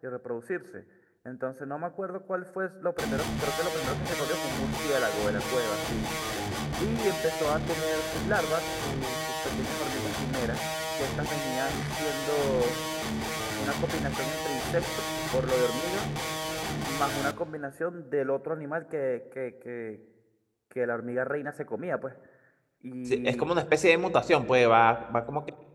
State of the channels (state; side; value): identical; both; correlation 1.00